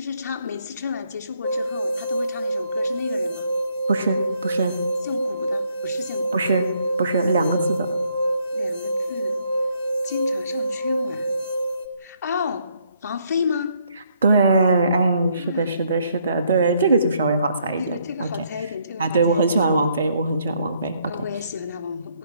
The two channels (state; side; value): inverted; both; correlation -0.71